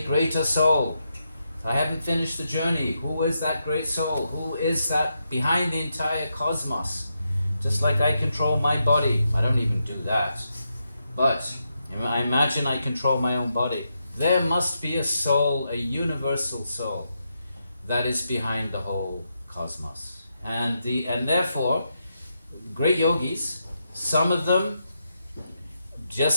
greater soul. I haven't finished the journey. Who is that great soul? Who is that behind the entire cosmos? Just like I control my body. I don't even do that. But I imagine I control my own body. There must be a soul, a universal soul, that is behind the whole cosmos. And therefore, great yogis, some of them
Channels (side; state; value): both; inverted; correlation -0.84